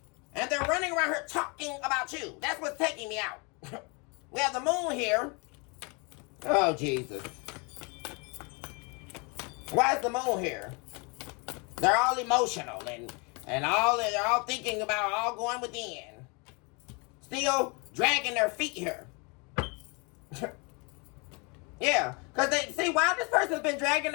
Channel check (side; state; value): right; quieter; 31.2 dB